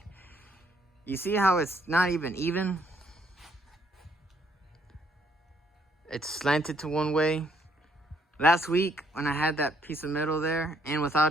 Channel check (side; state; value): both; normal; correlation 0.69